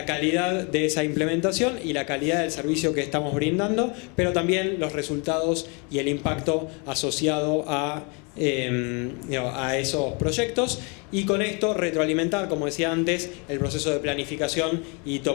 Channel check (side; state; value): right; quieter; 32.9 dB